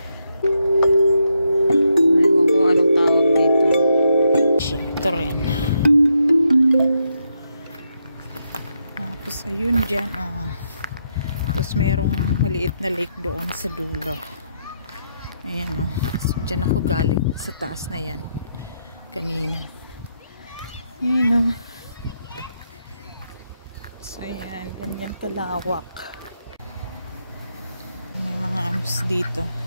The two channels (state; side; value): inverted; both; correlation -0.80